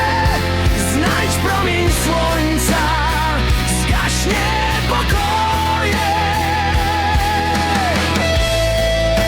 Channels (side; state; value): both; identical; correlation 1.00